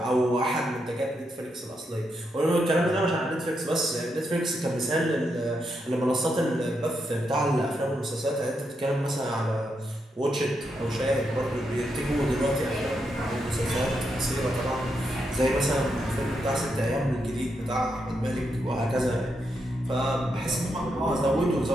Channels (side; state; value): both; normal; correlation 0.82